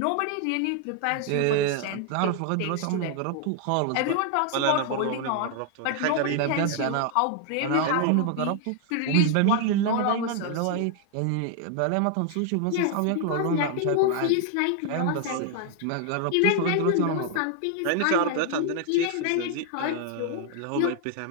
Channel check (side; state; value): both; different; correlation 0.00